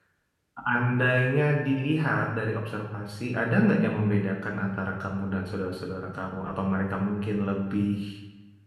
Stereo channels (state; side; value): identical; both; correlation 1.00